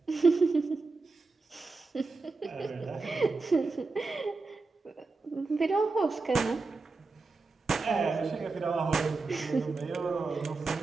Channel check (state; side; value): quieter; left; 3.9 dB